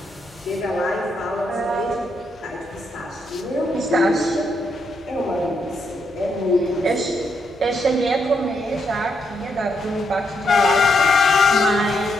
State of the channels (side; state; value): both; normal; correlation 0.78